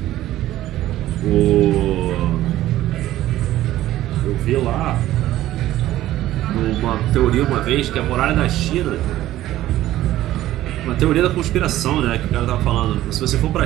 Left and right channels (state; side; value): quieter; left; 14.4 dB